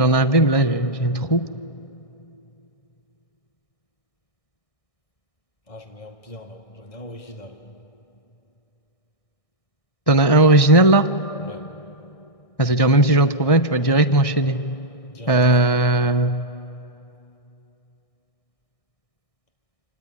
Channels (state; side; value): late; right; 1.6 ms